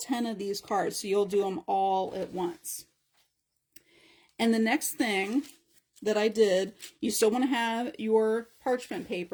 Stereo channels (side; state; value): both; identical; correlation 1.00